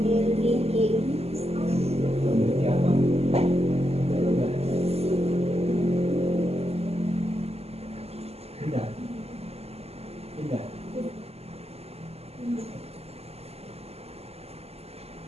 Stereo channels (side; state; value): left; late; 0.29 ms